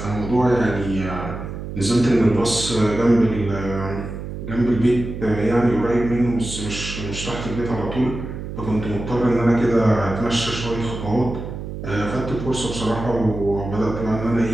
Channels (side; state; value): right; noise; hum, 8 dB below the sound